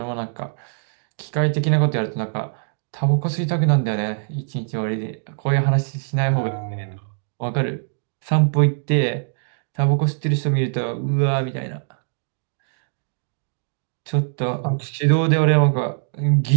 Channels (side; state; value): left; silent; digital silence